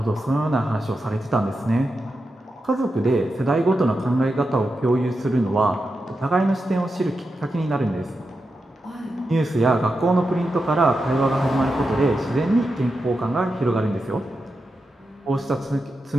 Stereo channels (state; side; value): normal; both; correlation 0.88